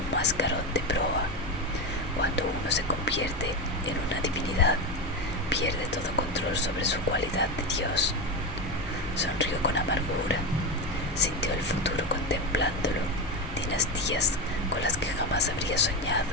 mascarón de proa. Cuando uno se convierte en una divinidad, pierde todo control sobre su cualidad de Dios. Sonrió con amargura, sintió el futuro contemplándolo, dinastías con las que jamás habría soñado.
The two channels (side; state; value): both; normal; correlation 0.15